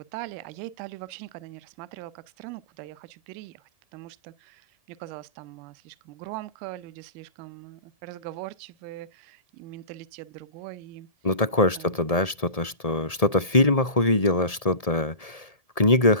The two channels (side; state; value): right; late; 1.7 ms